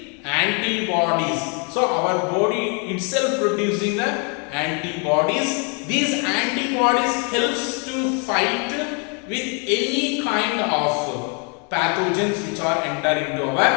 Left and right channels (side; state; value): right; quieter; 36.7 dB